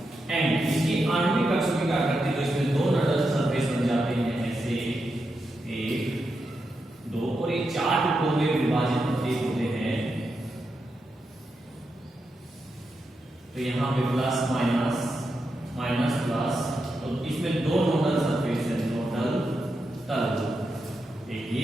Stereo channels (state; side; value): normal; both; correlation 0.86